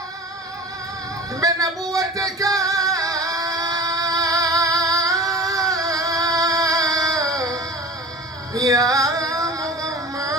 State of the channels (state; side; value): normal; both; correlation 0.38